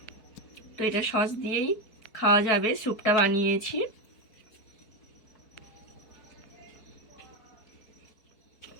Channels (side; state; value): right; late; 4.4 ms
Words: তো এটা সস দিয়েই খাওয়া যাবে। স্যুপটা বানিয়েছি।